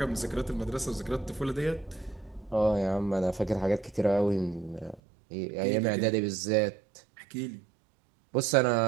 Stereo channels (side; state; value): left; drops out; at 5.0 s